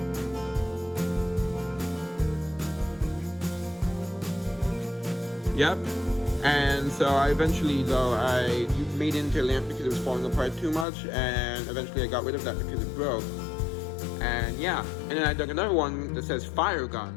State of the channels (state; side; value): drops out; right; at 10.9 s